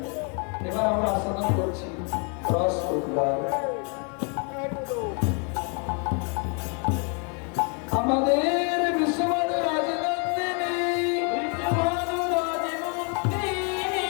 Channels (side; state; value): right; quieter; 37.7 dB